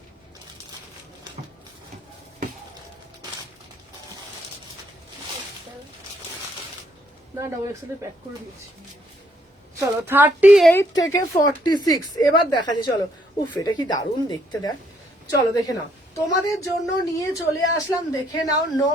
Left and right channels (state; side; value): normal; both; correlation 0.70